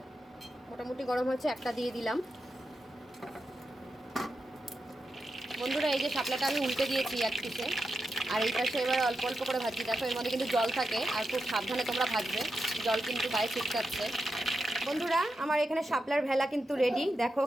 মোটামুটি গরম হচ্ছে, একটা দিয়ে দিলাম। বন্ধুরা, এই যে শাপলাটা আমি উল্টে দিয়েছি এক পিসে, আর এই পাশে এবার অল্প অল্প করে ভাজি। দেখো এর মধ্যে কিন্তু জল থাকে, আর খুব সাবধানে তোমরা ভাজবে, জল কিন্তু গায়ে ছিটকাচ্ছে। বন্ধুরা, আমার এখানে শাপলার ভেলা কিন্তু রেডি, দেখো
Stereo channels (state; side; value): normal; both; correlation 0.88